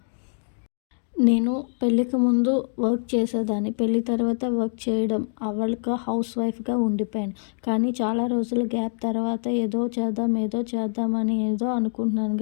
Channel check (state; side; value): silent; right; digital silence